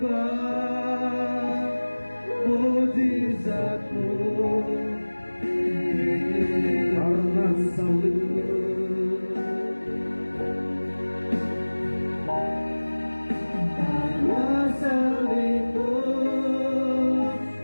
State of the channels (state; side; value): inverted; both; correlation -1.00